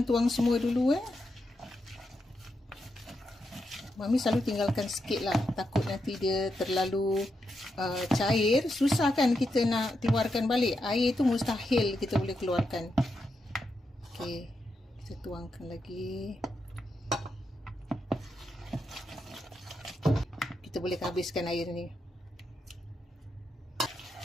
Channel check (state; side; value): normal; both; correlation 0.85